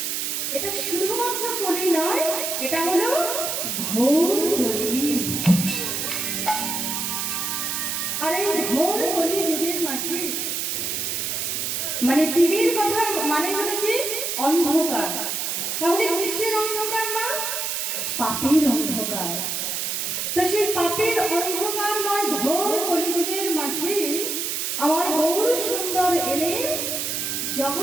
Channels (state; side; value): noise; right; hiss, 1 dB below the sound